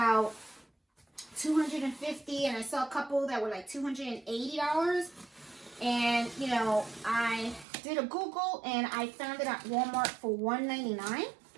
$250, and I saw a couple that were like $280. And, you know, I did a Google, and I found it at Walmart for $199.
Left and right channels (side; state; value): left; drops out; at 7.7 s